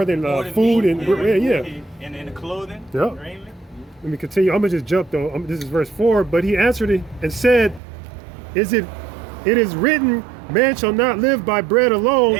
than food meat, and yeah. And the clothing, Yep. raiment. Let me continue. I'm gonna just jump though. This is verse 4. But he answered it and said, it is written, man shall not live by bread alone.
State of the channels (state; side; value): drops out; left; at 7.8 s